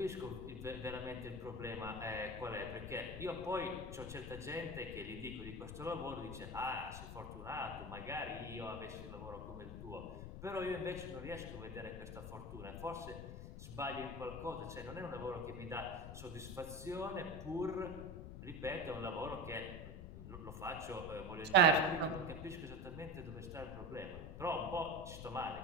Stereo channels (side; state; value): left; noise; rumble, 8 dB below the sound